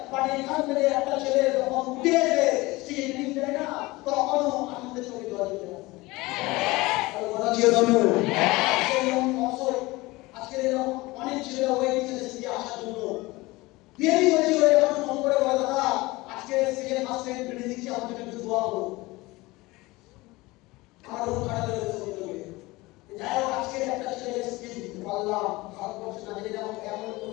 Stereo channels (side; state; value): right; quieter; 21.3 dB